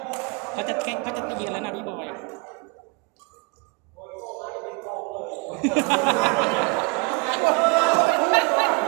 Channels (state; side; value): quieter; left; 29.5 dB